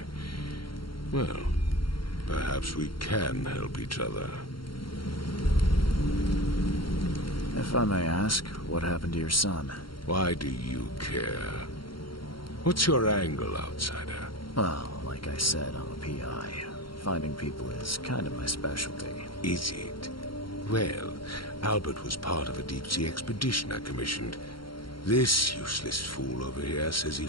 Well, perhaps we can help each other. If I may ask, what happened to your son? Why do you care? What's your angle, outsider? Well, like I said, I'm a PI. Finding people is kind of my specialty. Is it? Well, Albert was part of a deep-sea expedition I commissioned. This useless fool over here says he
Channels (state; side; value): late; right; 0.73 ms